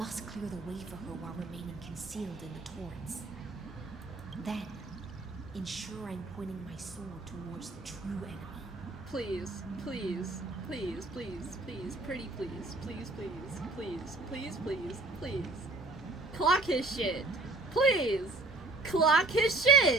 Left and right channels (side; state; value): left; quieter; 3.2 dB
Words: clear the way for her while remaining concealed in the torrents. Then, ensure I'm pointing my sword towards the true enemy. Please, please, please, please, please, pretty please, please, please, please, please, please, please. Clock his shit. Please! Clock his